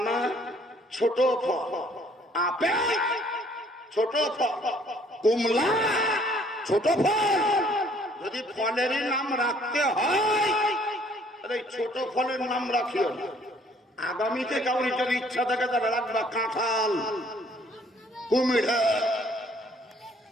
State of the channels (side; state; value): both; normal; correlation 0.61